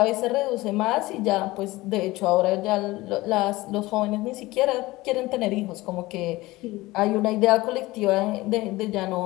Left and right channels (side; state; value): right; quieter; 19.6 dB